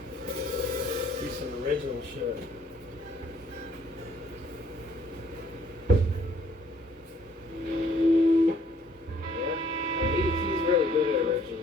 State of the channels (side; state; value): both; normal; correlation 0.62